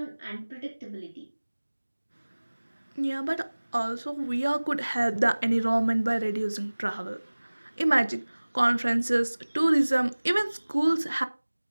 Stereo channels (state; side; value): inverted; both; correlation -1.00